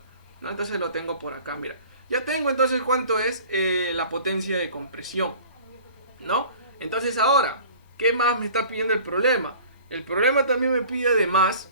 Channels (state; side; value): inverted; both; correlation -0.45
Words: ¿no? Entonces lo tengo por acá, mira. Ya tengo entonces cuánto es la potencia de compresión, ¿no? Entonces ahora, ¿qué más me está pidiendo el problema? El problema también me pide además,